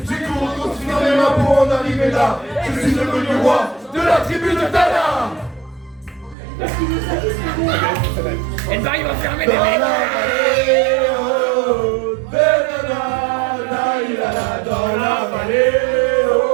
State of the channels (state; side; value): drops out; left; at 6.4 s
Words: J'ai couru continuer mes mains pour en arriver là. Je suis devenu roi de la tribu de Dana. Elle va fermer Dans les la vallée, oh, de Dana, dans la vallée,